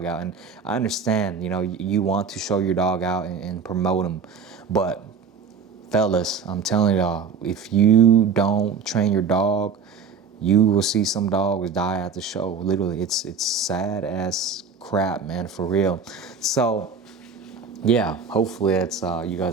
out. And I understand, you know, you want to show your dog out and promote him, but fellas, I'm telling y'all, if you don't train your dog, you will see some dogs die at the show. Literally, it's sad as crap, man, for real. So yeah, hopefully that's you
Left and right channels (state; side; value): quieter; left; 5.6 dB